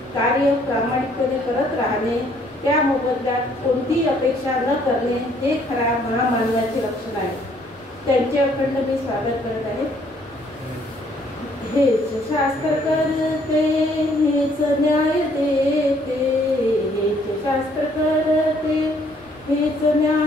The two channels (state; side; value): noise; right; rumble, 29 dB below the sound